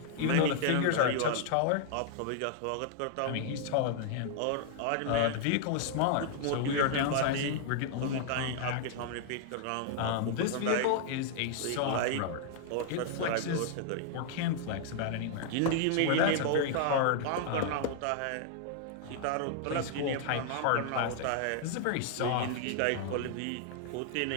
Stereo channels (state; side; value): different; both; correlation -0.01